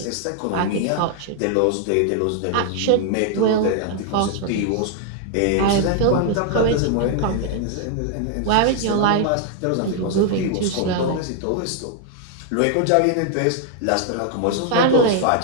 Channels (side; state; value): both; different; correlation 0.00